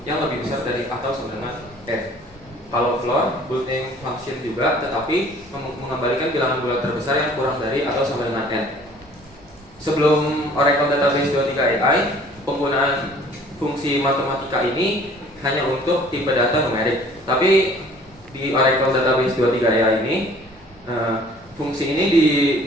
yang lebih besar dari atau sama dengan n. Kalau floor, built-in function juga, tetapi mengembalikan bilangan bulat terbesar yang kurang dari atau sama dengan n. Sebelum Oracle Database 23 AI, penggunaan fungsi matematika ini hanya untuk tipe data numerik. Tapi di Oracle Database 23 AI ini, fungsi ini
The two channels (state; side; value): normal; both; correlation 0.53